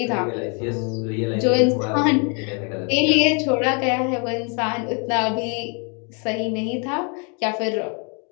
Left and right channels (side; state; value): right; quieter; 36.3 dB